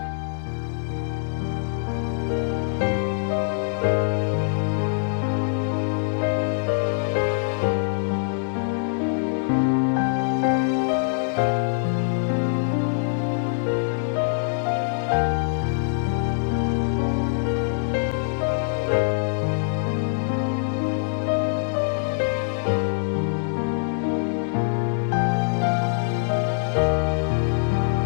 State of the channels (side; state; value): right; silent; digital silence